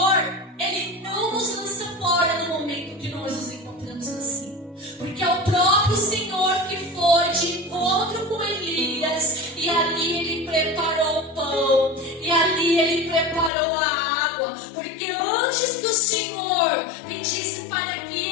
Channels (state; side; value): drops out; right; at 13.5 s